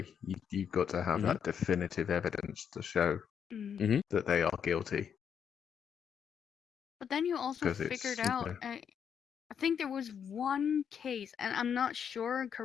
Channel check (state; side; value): quieter; right; 7.8 dB